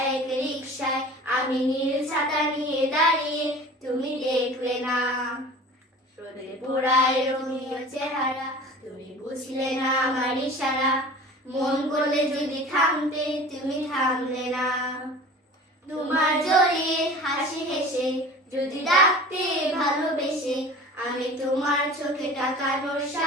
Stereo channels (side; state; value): both; normal; correlation 0.40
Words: এক রিকশায়, আমি নীল ছাতা নিয়ে দাঁড়িয়ে, তুমি দেখলে না। রোদে পোড়ায় রঙিন চেহারা, তুমি বুঝলে না আমার ইশারা। মন করলে যদি থামতে, তুমি থামলে না। তোমার জড়িয়ে হাসি হেসে যদি ডাকতে ভালোবেসে, আমি তোমার চোখে তাকানোর